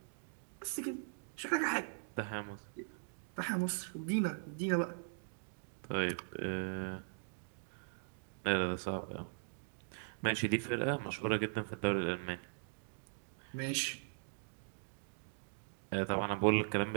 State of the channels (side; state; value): left; silent; digital silence